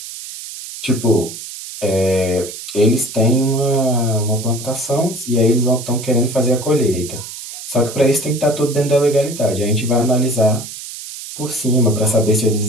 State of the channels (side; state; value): right; noise; hiss, 11 dB below the sound